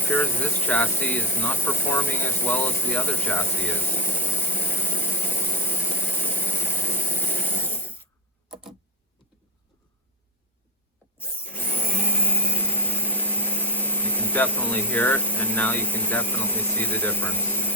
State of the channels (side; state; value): both; normal; correlation 0.09